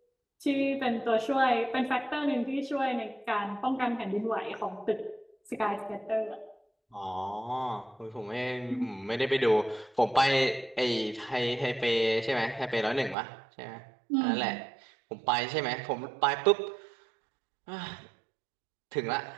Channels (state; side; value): drops out; left; at 13.2 s